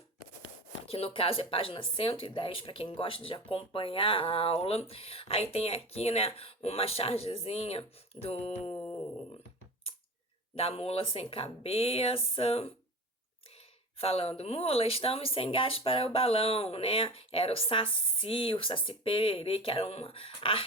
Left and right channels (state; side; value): normal; both; correlation 0.32